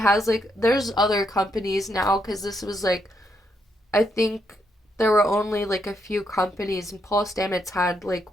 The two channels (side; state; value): both; normal; correlation 0.78